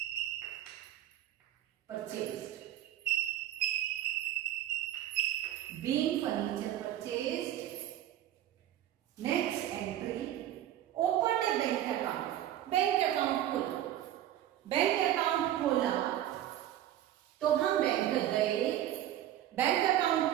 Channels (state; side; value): quieter; left; 12.4 dB